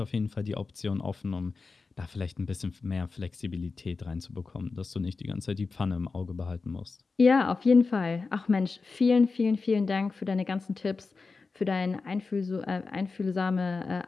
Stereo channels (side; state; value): right; quieter; 4.3 dB